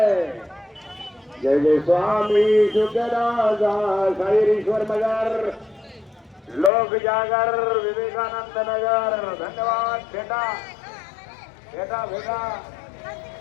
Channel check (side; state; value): right; drops out; at 6.7 s